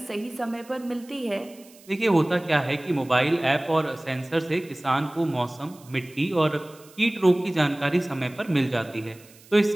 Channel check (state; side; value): noise; right; hiss, 24 dB below the sound